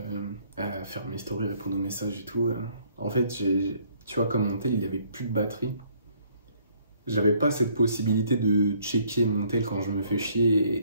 faire mes stories, répondre aux messages et tout. En fait, tu vois, comme mon tel, il y avait plus de batterie. J'avais pas cette possibilité de checker mon tel quand je me fais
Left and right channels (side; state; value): both; inverted; correlation -0.64